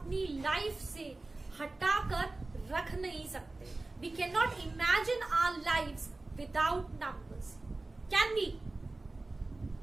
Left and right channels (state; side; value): quieter; left; 3.1 dB